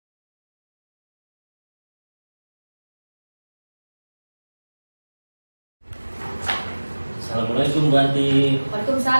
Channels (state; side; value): inverted; both; correlation -1.00